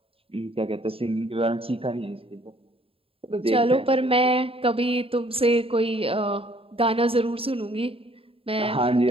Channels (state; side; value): late; left; 0.27 ms